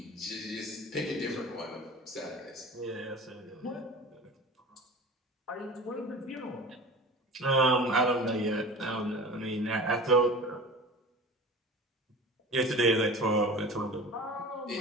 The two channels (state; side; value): normal; both; correlation 0.36